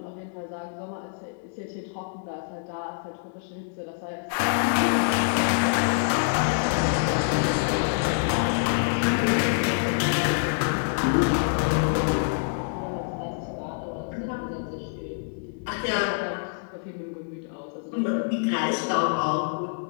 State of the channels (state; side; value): silent; right; digital silence